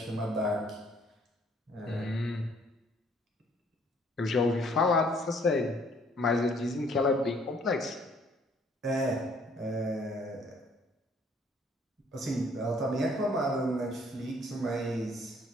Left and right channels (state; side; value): normal; both; correlation 0.61